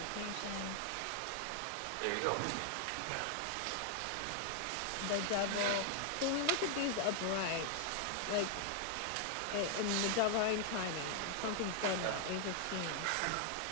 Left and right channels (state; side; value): different; both; correlation 0.00